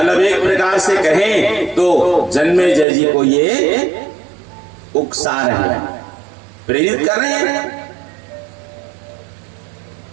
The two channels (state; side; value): drops out; left; at 2.9 s